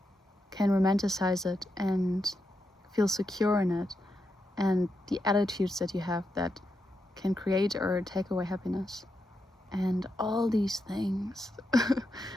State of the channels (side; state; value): both; normal; correlation 0.85